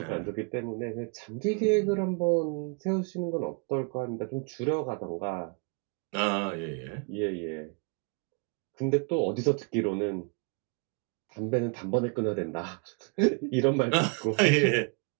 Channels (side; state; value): left; quieter; 35.1 dB